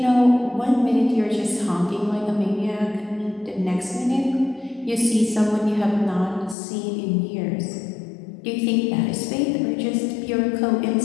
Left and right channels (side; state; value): right; drops out; at 6.6 s